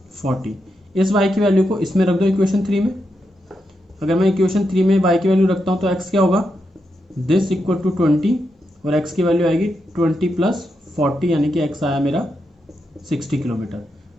40। इस y की वैल्यू को इसमें रख दो इक्वेशन 3 में। अगर मैं इक्वेशन 3 में y की वैल्यू रखता हूँ तो x क्या होगा, दिस इक्वल टू 20, और x की वैल्यू आएगी 20 प्लस 40, यानी कि x आया मेरा 60 किलोमीटर।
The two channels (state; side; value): normal; both; correlation 0.84